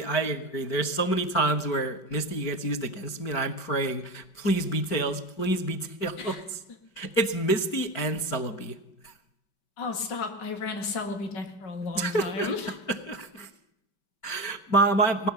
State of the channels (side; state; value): right; late; 5.2 ms